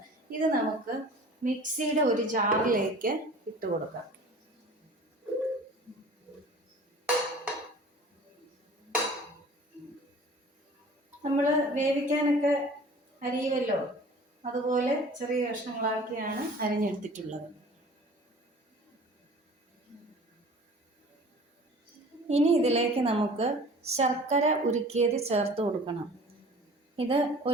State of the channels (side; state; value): both; normal; correlation 0.45